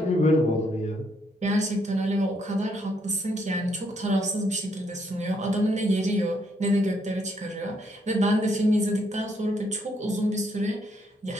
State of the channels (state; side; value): normal; both; correlation 0.73